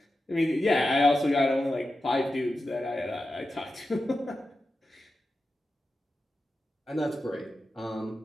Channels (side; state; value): both; normal; correlation 0.91